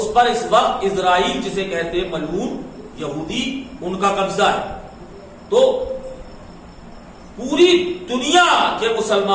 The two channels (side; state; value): both; identical; correlation 1.00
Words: پر اس وقت اسرائیل جسے کہتے ہیں ملعون یہودی ان کا قبضہ ہے۔ تو پوری دنیا کے